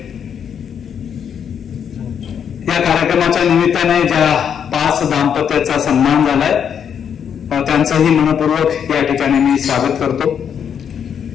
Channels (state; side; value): quieter; right; 8.0 dB